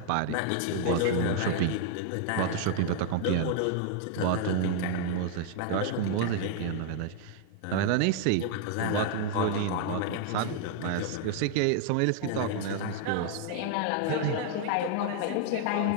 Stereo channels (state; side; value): different; both; correlation 0.00